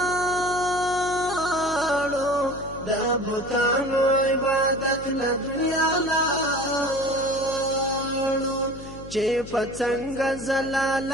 د بوتانو عبادت له دنیا لاړو چې په څنګه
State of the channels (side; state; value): left; noise; hum, 14 dB below the sound